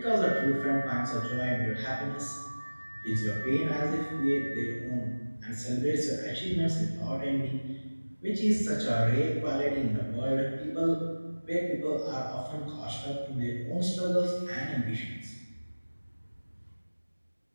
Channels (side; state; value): both; inverted; correlation -1.00